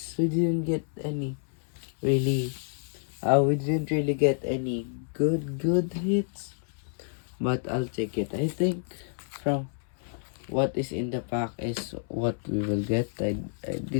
We didn't get any really. We didn't really get any good hits, but I'll take it. I think from what is in the pack is what we will get. I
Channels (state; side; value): silent; right; 59 dB below the other